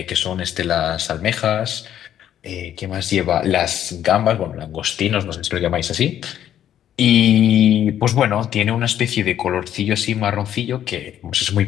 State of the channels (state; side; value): quieter; right; 10.7 dB